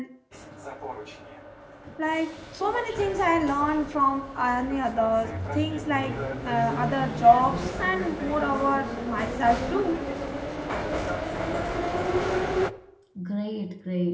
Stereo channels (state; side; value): identical; both; correlation 1.00